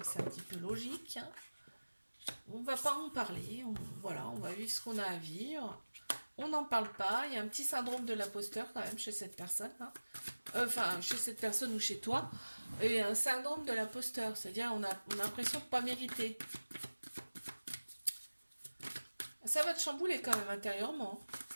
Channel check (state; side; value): inverted; both; correlation -1.00